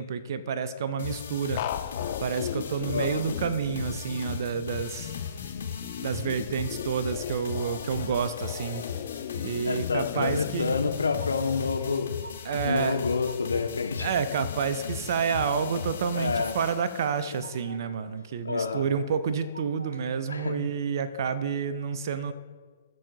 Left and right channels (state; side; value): inverted; both; correlation -0.60